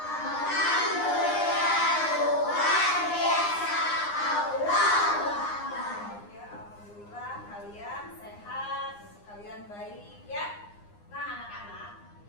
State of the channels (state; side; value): late; right; 9.8 ms